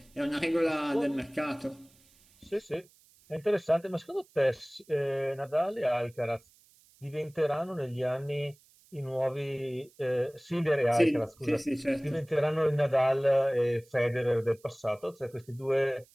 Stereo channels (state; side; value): noise; right; hiss, 29 dB below the sound